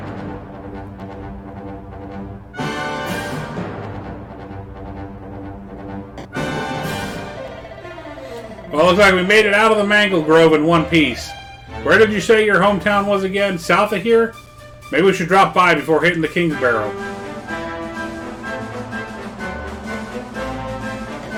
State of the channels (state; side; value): identical; both; correlation 1.00